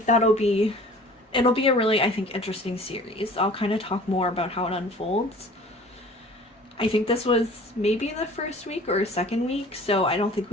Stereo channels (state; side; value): normal; both; correlation 0.47